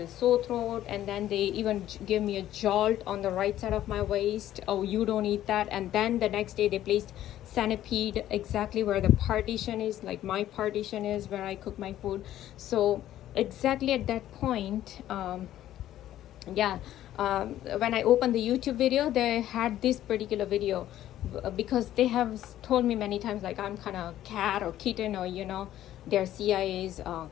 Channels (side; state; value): right; quieter; 12.8 dB